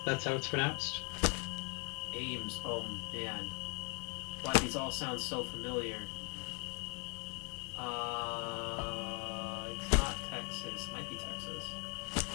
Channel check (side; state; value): right; quieter; 33.8 dB